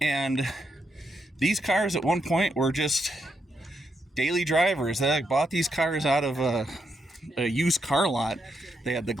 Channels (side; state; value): both; normal; correlation 0.81